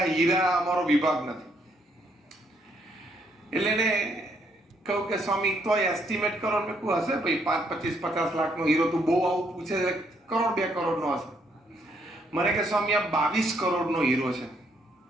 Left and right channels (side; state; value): both; normal; correlation 0.72